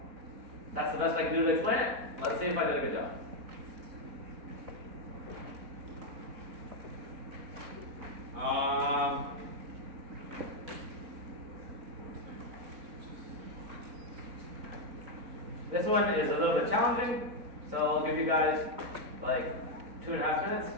that's the best I can do to explain it. Let's see if I did a good job. This one is a little bit challenging, so I'll give you guys like 2.5 minutes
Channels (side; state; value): left; late; 4.0 ms